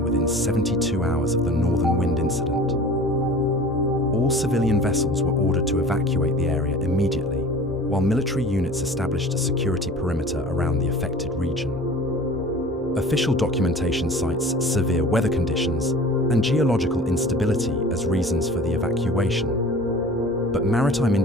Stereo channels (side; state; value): both; normal; correlation 0.42